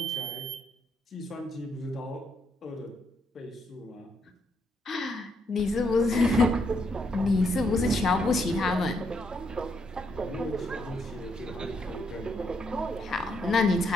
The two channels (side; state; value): both; normal; correlation 0.75